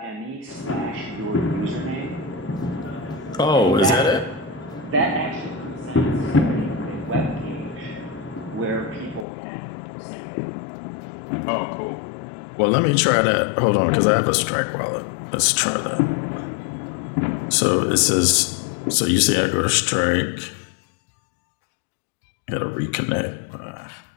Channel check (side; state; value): right; drops out; at 9.2 s